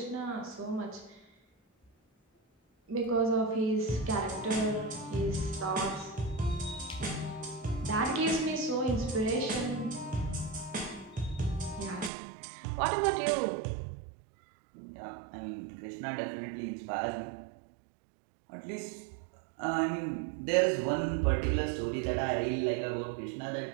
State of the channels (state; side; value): drops out; left; at 12.1 s